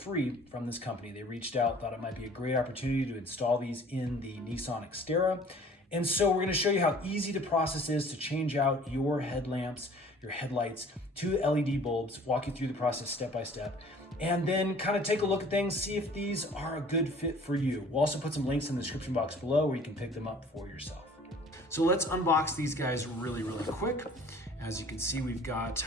from this company. They reached out, thought it might be a great opportunity to install these in the Nissan Xterra. And so we're going to show you how easy the process is to change out your headlamps, your headlights to LED bulbs, walk you through the process step by step, and then kind of take a look at things, see if these are a good fit for you. We'll also put some links in the description box below where you can pick them up for yourself. So let's unbox these guys really quick. As you can see, we've got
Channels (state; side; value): normal; both; correlation 0.50